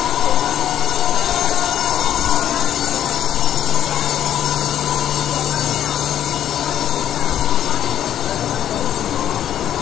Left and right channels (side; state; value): right; quieter; 10.7 dB